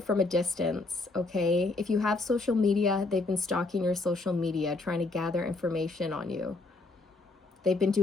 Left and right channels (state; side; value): quieter; right; 3.3 dB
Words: a distance, okay? If you have social media, they've been stalking your social media, trying to gather information on you. They've been